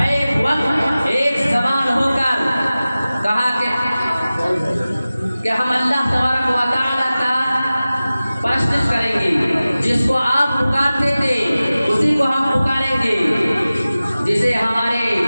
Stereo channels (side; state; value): both; inverted; correlation -0.97